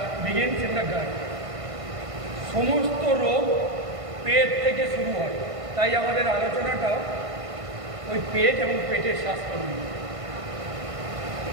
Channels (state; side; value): late; left; 1.5 ms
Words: begins in the gut. সমস্ত রোগ পেট থেকে শুরু হয়, তাই আমাদের আলোচনাটাও ওই পেট এবং পেটের স্বাস্থ্য নিয়ে।